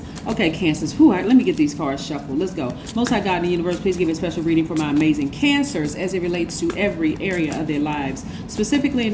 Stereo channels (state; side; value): identical; both; correlation 1.00